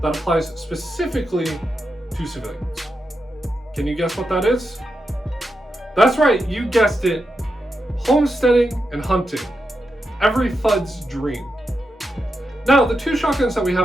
applies specifically to civilians. Can you guess what that is? That's right, you guessed it. Homesteading and hunting. Every FUD's dream. Now, the 2 shotguns that we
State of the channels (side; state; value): both; normal; correlation 0.87